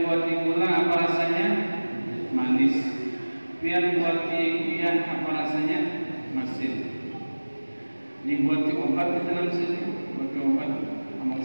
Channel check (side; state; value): both; inverted; correlation -1.00